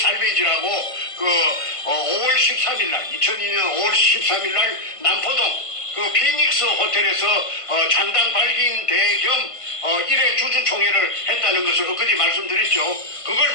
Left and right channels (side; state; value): right; late; 1.5 ms